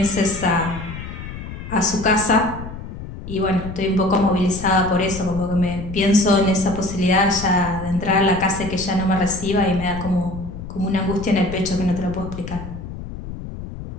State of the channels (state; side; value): noise; left; rumble, 10 dB below the sound